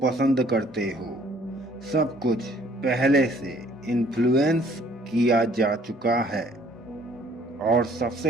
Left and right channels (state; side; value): normal; both; correlation 0.59